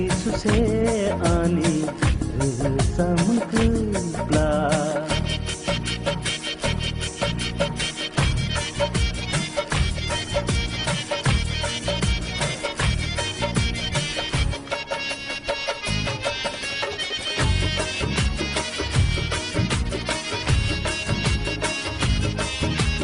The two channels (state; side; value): identical; both; correlation 1.00